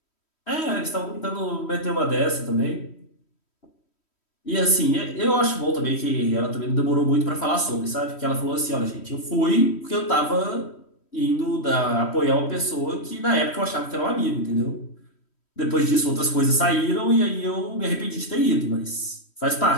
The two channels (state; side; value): late; right; 3.1 ms